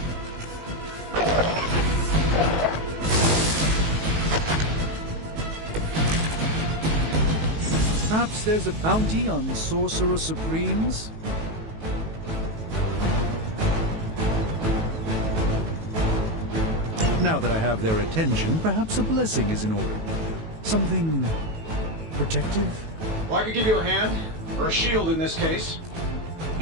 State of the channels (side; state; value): left; late; 18 ms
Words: Perhaps there's a bounty on Sorcerer Supremes? Now that I have their attention, perhaps a blessing is in order. Something protective? Well, I could give you a hand, or a shield in this case.